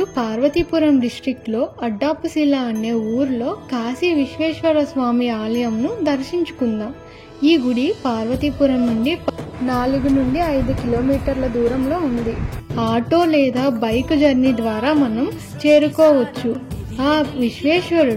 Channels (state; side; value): identical; both; correlation 1.00